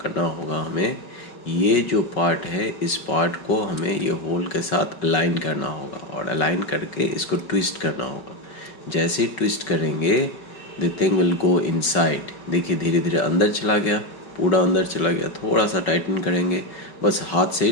करना होगा हमें, ये जो पार्ट है इस पार्ट को हमें ये होल के साथ अलाइन करना होगा, और अलाइन करके इसको ट्विस्ट करना होगा. जैसे ही ट्विस्ट करेंगे the thing will go inside. देखिए धीरे धीरे अंदर चला गया, पूरा अंदर चला गया. थोड़ा सा टाइटन करेंगे, बस हाथ से ही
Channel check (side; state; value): right; late; 5.3 ms